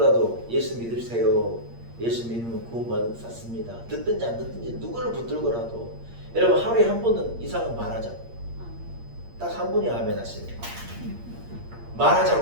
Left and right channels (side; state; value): left; late; 8.6 ms